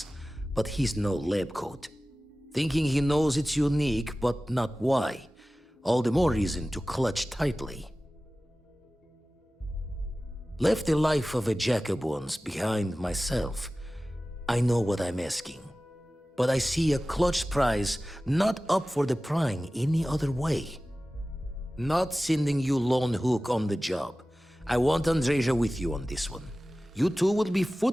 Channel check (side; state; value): both; normal; correlation 0.96